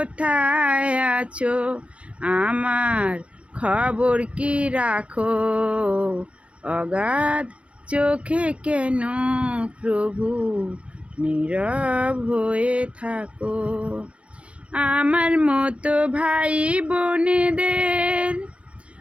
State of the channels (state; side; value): late; left; 0.061 ms